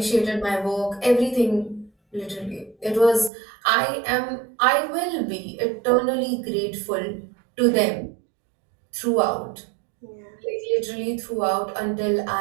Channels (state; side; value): drops out; left; at 3.3 s